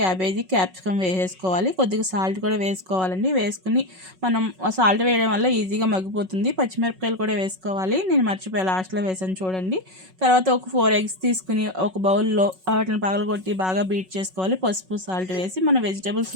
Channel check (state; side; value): late; left; 5.4 ms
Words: క్యాప్సికమ్ వేసేసుకోవాలి. కొద్దిగా సాల్ట్ కూడా వేసుకోవాలండి. వేసుకుని మనం సాల్ట్ వేయడం వల్ల ఈజీగా మగ్గిపోతుంది. పచ్చిమిరపకాయలు కూడా వేసుకోవాలి. నేను మర్చిపోయి లాస్ట్లో వేసాను చూడండి. తర్వాత ఒక 4 ఎగ్స్ తీసుకుని ఒక బౌల్లో వాటిని పగలగొట్టి బాగా బీట్ చేసుకోవాలి. పసుపు, సాల్ట్ వేసి మన